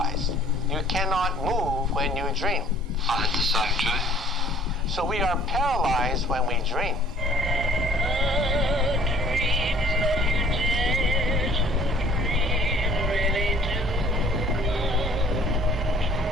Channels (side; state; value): both; normal; correlation 0.54